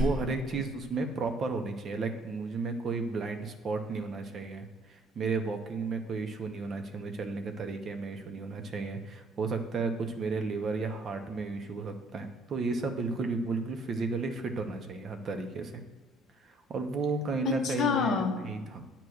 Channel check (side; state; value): both; normal; correlation 0.60